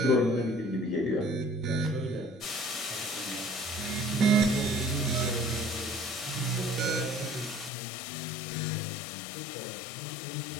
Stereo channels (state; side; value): drops out; right; at 7.7 s